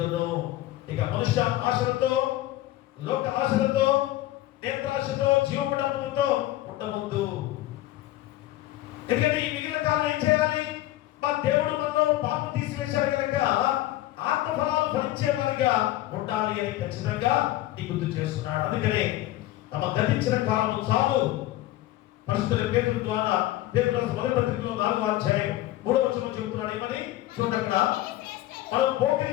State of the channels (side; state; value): right; quieter; 15.5 dB